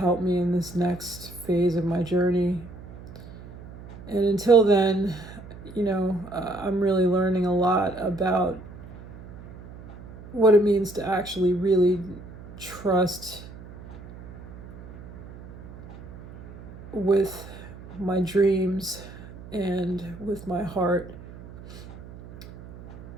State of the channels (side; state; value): right; noise; hum, 16 dB below the sound